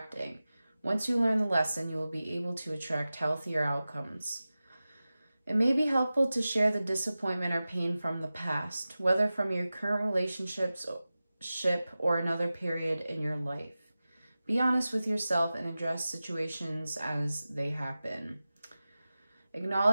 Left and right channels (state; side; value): inverted; both; correlation -0.95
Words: Once you learn the lesson, you will be able to attract healthier outcomes. It may be helpful to share the disappointment or pain from the past, whether from your current relationship or another period in your life. Be honest with yourself and address situations as they happen.